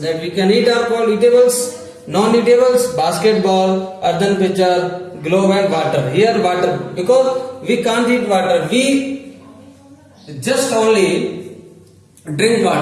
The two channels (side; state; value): both; identical; correlation 1.00